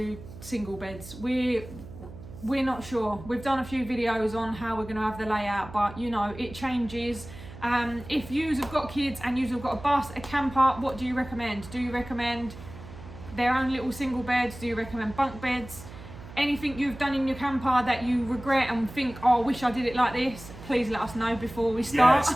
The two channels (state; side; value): noise; right; hum, 15 dB below the sound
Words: single beds? We're not sure. We've done a few videos on how we're going to have the layout, but you know, it changes. If yous have got kids and yous have got a bus, a camper, what do you recommend? Do you recommend their own little single beds? Do you recommend bunk beds? Anything you've done in your camper that you regret and think, oh, I wish I did it like this, please let us know before we start.